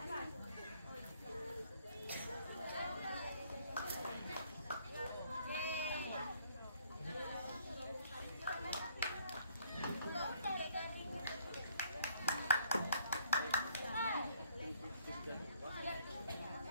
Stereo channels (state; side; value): inverted; both; correlation -0.64